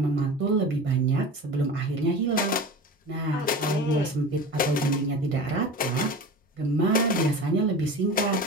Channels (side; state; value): both; normal; correlation 0.34